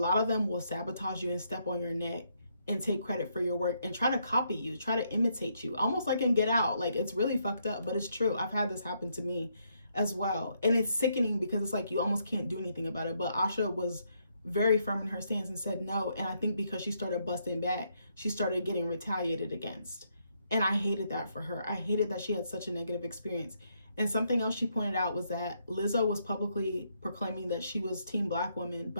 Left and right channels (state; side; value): inverted; both; correlation -0.75